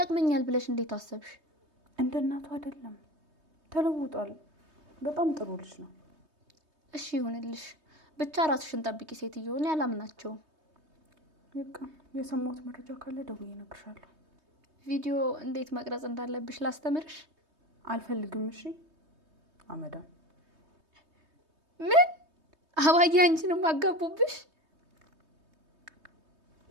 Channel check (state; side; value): late; left; 3.2 ms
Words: ብለሽ እንዴት አሰብሽ? እንደ እናቱ አይደለም፣ ተለውጧል። በጣም ጥሩ ልጅ ነው። እሺ ይሁንልሽ። ብቻ ራስሽን ጠብቂ ሴትዮ። እኔ አላምናቸውም። በቃ የሰማሁት መረጃ ካለ ደውዬ እነግርሻለሁ። ቪዲዮ እንዴት መቅረጽ እንዳለብሽ ላስተምርሽ? አልፈልግም። እሺ አመዳም። ምን አባዬ አንቺንም አጋቡብሽ?